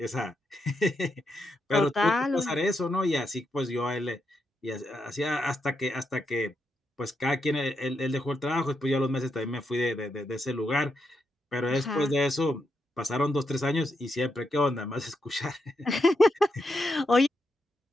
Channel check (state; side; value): normal; both; correlation 0.83